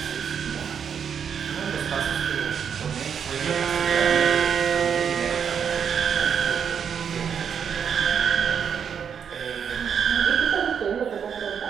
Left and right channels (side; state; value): left; quieter; 7.5 dB